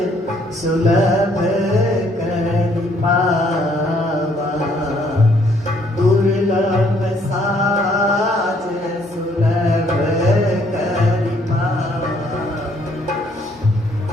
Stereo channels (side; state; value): both; normal; correlation 0.66